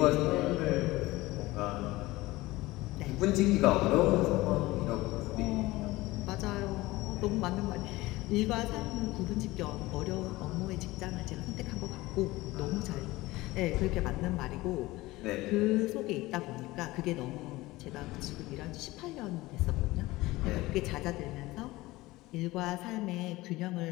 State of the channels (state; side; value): quieter; right; 19.4 dB